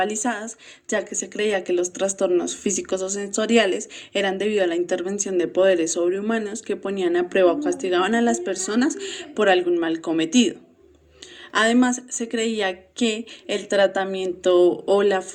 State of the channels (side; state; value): both; identical; correlation 1.00